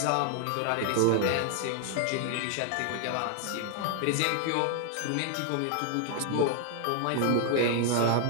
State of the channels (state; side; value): different; both; correlation 0.00